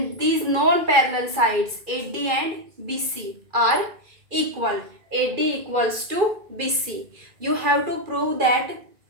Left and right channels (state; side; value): late; left; 2.4 ms